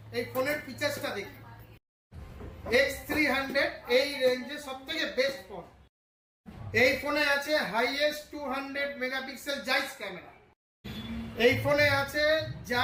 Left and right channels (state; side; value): identical; both; correlation 1.00